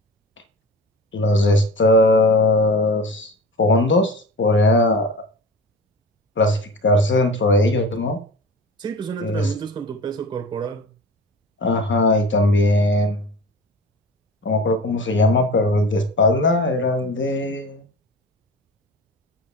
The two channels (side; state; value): both; normal; correlation 0.36